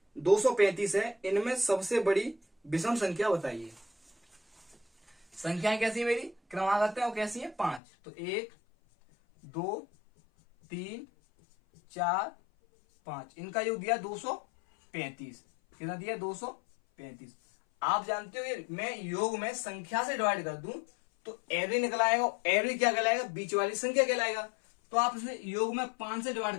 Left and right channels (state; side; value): drops out; right; at 7.8 s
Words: 235 है, इनमें सबसे बड़ी विषम संख्या बताइए। संख्याएं कैसी है मेरी क्रमागत है और कैसी है 5, तो 1 2 3 4 5, इनका योग दिया 235, कितना दिया 235। आप जानते हो मैं योग में संख्या से डिवाइड कर दूं तो एवरेज निकल आएगा। एवरेज क्या कहलाएगा? बीच वाली संख्या कहलाएगा। तो आप इसे योग में 5 से डिवाइड